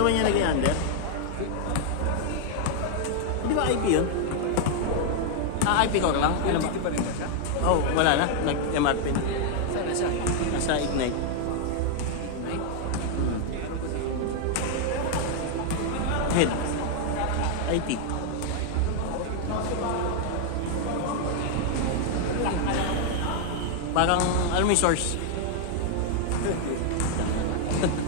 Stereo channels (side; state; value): both; different; correlation 0.00